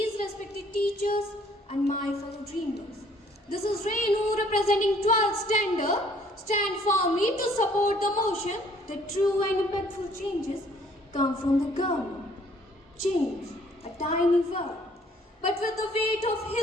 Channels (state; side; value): normal; both; correlation 0.61